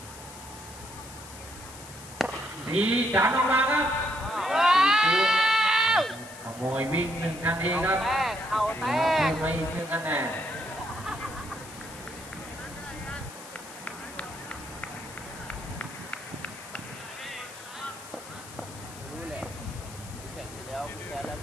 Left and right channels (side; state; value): left; noise; hiss, 16 dB below the sound